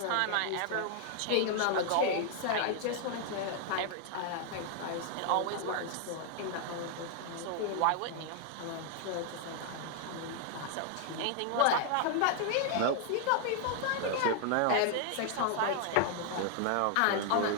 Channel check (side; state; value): both; different; correlation 0.00